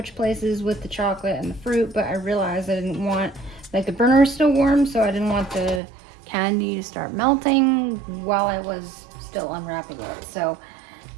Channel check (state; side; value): drops out; left; at 5.8 s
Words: places with the chocolate and the fruit, but I realized I didn't want, like, the burner is still warm, so I didn't want the candy to start melting while I was still unwrapping it. So